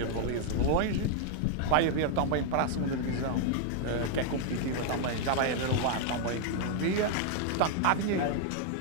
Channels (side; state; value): both; different; correlation 0.00